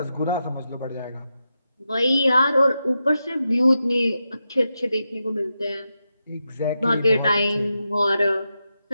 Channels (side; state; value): both; inverted; correlation -0.88